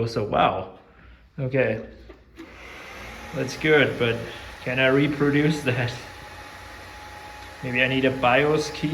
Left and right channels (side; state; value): both; identical; correlation 1.00